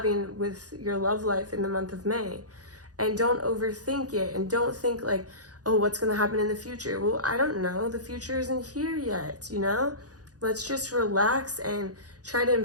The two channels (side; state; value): left; late; 0.68 ms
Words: with your love life in the month of May. And don't overthink it, and don't think like, oh, what's going to happen in the future? Well, I don't know. The future isn't here yet, you know? Let's just relax and try to